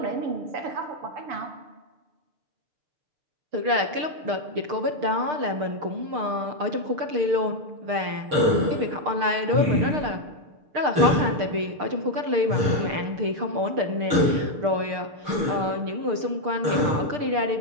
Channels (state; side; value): late; left; 6.6 ms